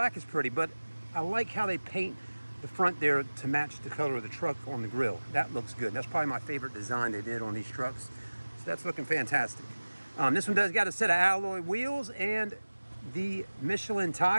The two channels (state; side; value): inverted; both; correlation -1.00